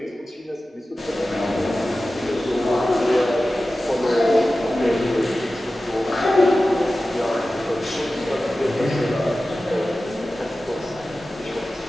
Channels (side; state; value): both; normal; correlation 0.95